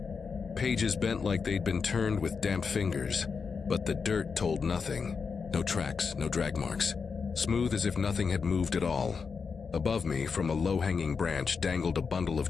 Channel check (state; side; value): quieter; right; 5.5 dB